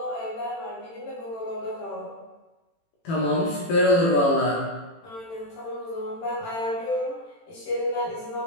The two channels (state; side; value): late; right; 18 ms